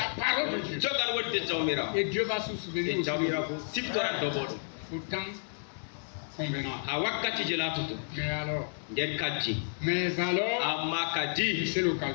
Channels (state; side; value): silent; right; digital silence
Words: parole de Dieu. Et Dieu va se souvenir aussi. Au temps convenant. Mais alors, c'est le